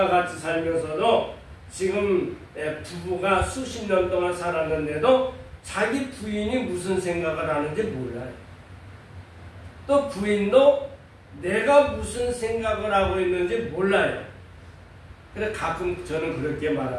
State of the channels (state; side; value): identical; both; correlation 1.00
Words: 같이 살면서도 지금 부부가 수십 년 동안 살았는데도 자기 부인이 무슨 생각을 하는지 몰라요. 또 부인도 내가 무슨 생각을 하고 있는지 몰라요. 그래서 가끔 저는 그렇게